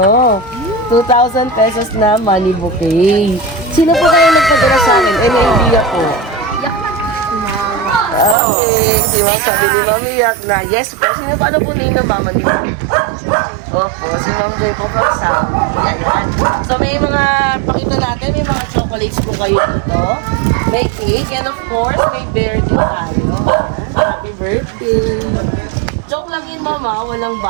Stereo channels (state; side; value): drops out; left; at 8.3 s